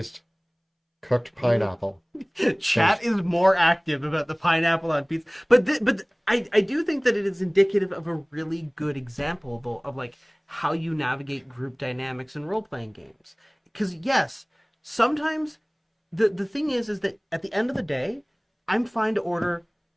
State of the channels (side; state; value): both; identical; correlation 1.00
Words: cooked pineapple. Chat is more active about the pineapple on pizza, but I do think that it is indicative of a really good example though of like how you navigate group dynamics in role playing games. Because yes, sometimes the thing is that at the end of the day, I'm fine to order.